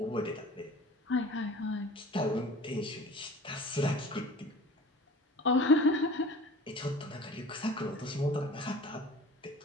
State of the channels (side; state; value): both; normal; correlation 0.42